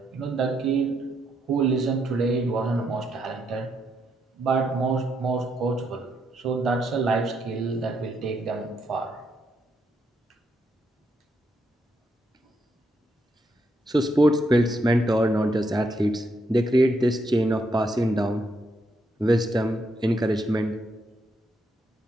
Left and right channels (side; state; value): both; normal; correlation 0.78